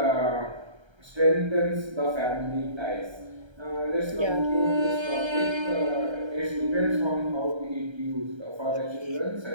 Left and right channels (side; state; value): left; late; 1.3 ms